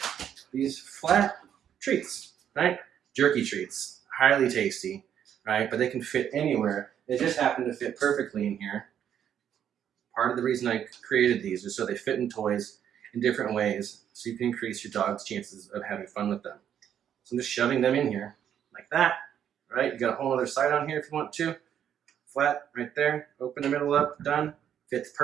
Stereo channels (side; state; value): left; quieter; 9.4 dB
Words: These flat treats, right? Jerky treats, highly tasty, right? But they can fit anywhere. They just happen to fit perfectly in here. Part of the reason I created these is so they fit in toys in different ways, so you can increase your dog's chances of having fun with them. So I'm just shoving them in here like that, right? You got a whole other side on here if you want to. Flat right there, open the middle up, done. Fits